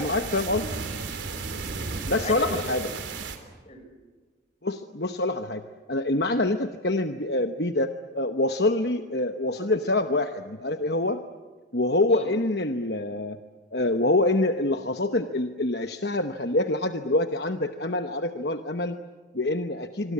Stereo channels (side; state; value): both; normal; correlation 0.07